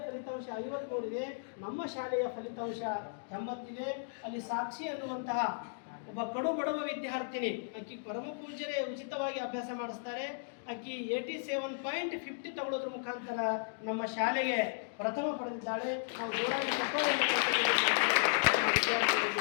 ಫಲಿತಾಂಶ 53 ಇದೆ. ನಮ್ಮ ಶಾಲೆಯ ಫಲಿತಾಂಶ 80 ಇದೆ. ಅಲ್ಲಿ ಸಾಕ್ಷಿ ಅನ್ನುವಂತಹ ಒಬ್ಬ ಕಡು ಬಡವ ವಿದ್ಯಾರ್ಥಿನಿ, ಆಕಿ ಪರಮ ಪೂಜ್ಯರೇ ಉಚಿತವಾಗಿ ಅಭ್ಯಾಸ ಮಾಡಿಸ್ತಾರೆ. ಆಕಿ 87.50 ತಗೊಳ್ಳೋದ್ರ ಮುಖಾಂತರ ನಮ್ಮ ಶಾಲೆಗೆ ಪ್ರಥಮ ಪಡೆದಿದ್ದಾಳೆ. ನಾವು ಜೋರಾಗಿ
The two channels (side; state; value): right; silent; digital silence